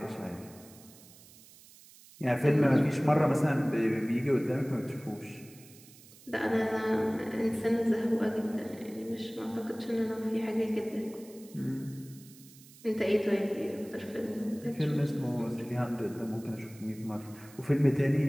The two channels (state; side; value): noise; right; hiss, 22 dB below the sound